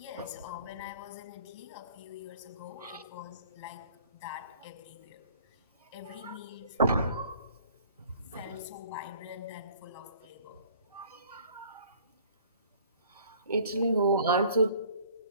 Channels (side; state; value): both; inverted; correlation -0.53